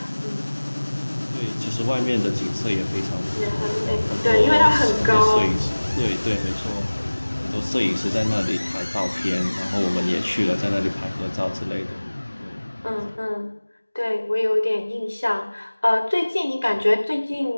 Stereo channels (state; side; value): inverted; both; correlation -1.00